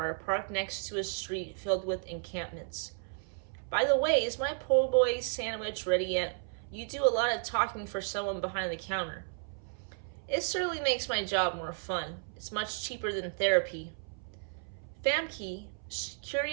parked next to a street filled with encampments. "By the way, is my po' boy sandwich ready yet? You do a lot of talking for someone behind the counter." "It certainly makes my job more fun. It's much cheaper than therapy." Famke,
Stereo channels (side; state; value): left; silent; 56 dB below the other